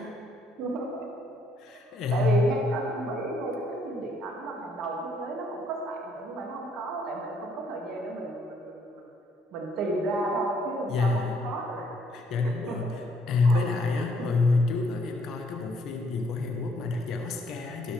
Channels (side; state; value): both; normal; correlation 0.68